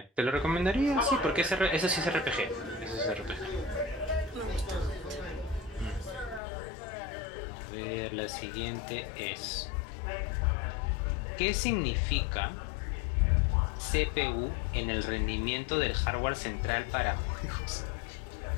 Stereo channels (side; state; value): right; drops out; at 6.4 s